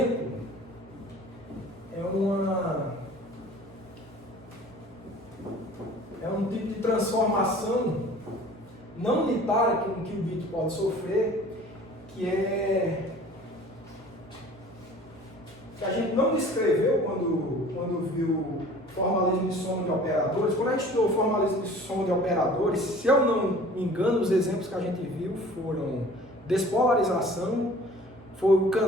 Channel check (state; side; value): normal; both; correlation 0.47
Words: é um tipo de transformação não unitária que um qubit pode sofrer, que a gente não descreveu quando viu formalismo de soma de operadores. Quando a gente estudou formalismo de soma de operadores, se eu não me engano, os exemplos que a gente viu foram despolarização, foi o